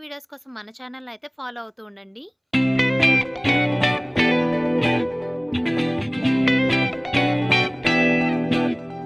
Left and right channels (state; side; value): identical; both; correlation 1.00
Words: వీడియోస్ కోసం మన ఛానెల్‌ని అయితే ఫాలో అవుతూ ఉండండి.